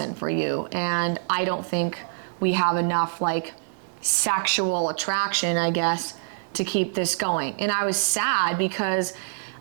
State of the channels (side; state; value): left; silent; digital silence